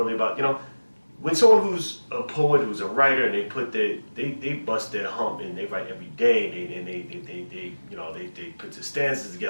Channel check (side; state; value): both; inverted; correlation -1.00